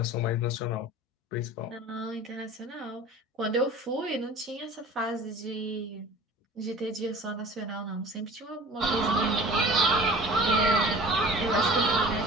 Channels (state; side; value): normal; both; correlation 0.42